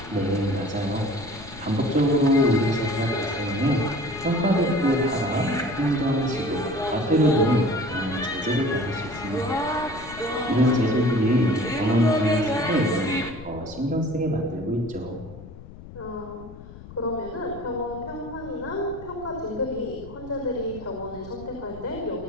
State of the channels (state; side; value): noise; left; rumble, 16 dB below the sound